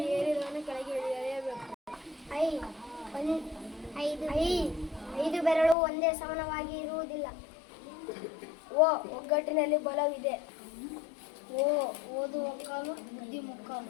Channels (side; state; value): right; drops out; at 5.8 s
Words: ಏರಿದವನು ಕೆಳಗೆ ಇಳಿಯಲೇಬೇಕು. ಐದು ಬೆರಳು ಒಂದೇ ಸಮಾನವಾಗಿ ಇರುವುದಿಲ್ಲ. ಒಗ್ಗಟ್ಟಿನಲ್ಲಿ ಬಲವಿದೆ. ಓದು ಒಕ್ಕಾಲು, ಬುದ್ಧಿ ಮುಕ್ಕಾಲು.